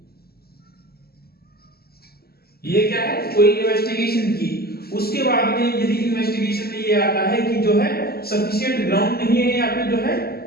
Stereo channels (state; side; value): late; right; 0.45 ms